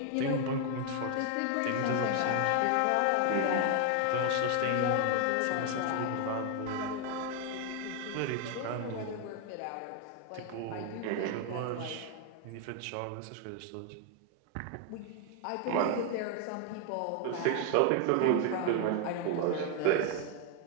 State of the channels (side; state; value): both; different; correlation 0.00